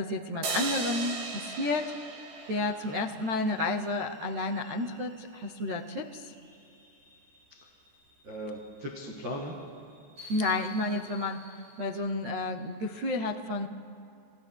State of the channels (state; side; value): late; left; 14 ms